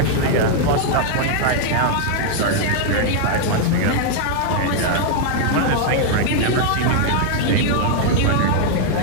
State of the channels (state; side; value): different; both; correlation 0.00